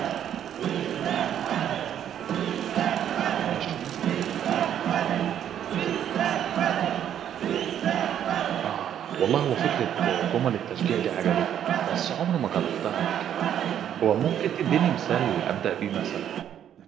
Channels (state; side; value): quieter; left; 9.9 dB